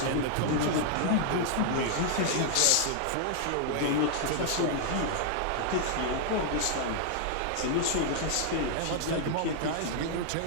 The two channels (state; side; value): different; both; correlation 0.00